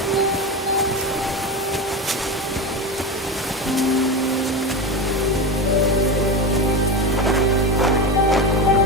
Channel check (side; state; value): both; normal; correlation 0.20